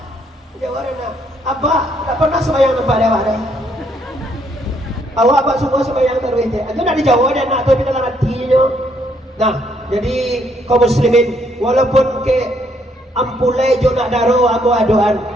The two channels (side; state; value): both; normal; correlation 0.70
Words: Jawab nak. Abah tak pernah sembahyang tempat dia ada. Awak abah semua sembahyang tarawih je. Itu nak dijawab dan nak tapi dalam hatinya. Nah, jadi kaum muslimin walaupun ke ampulai jo nak daro amu adoan